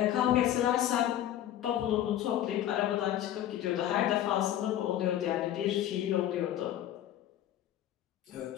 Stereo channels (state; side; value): quieter; right; 11.9 dB